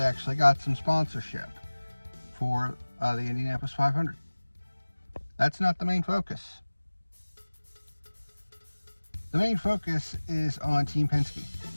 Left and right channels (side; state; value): both; inverted; correlation -1.00